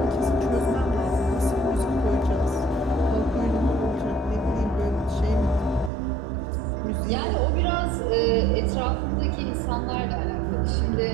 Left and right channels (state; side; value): drops out; left; at 5.9 s